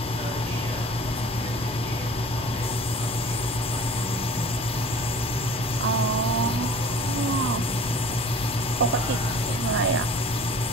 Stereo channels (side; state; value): both; normal; correlation 0.45